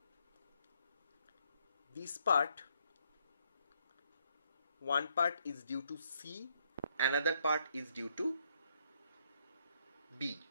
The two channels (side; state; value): both; inverted; correlation -0.73